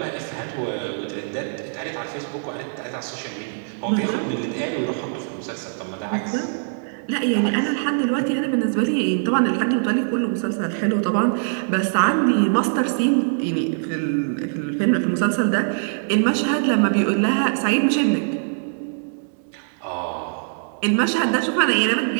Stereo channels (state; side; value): silent; left; digital silence